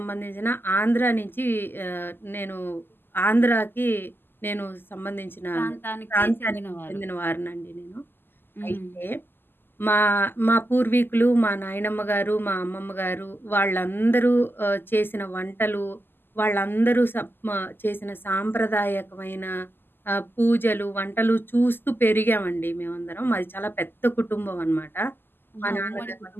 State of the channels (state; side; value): late; right; 0.097 ms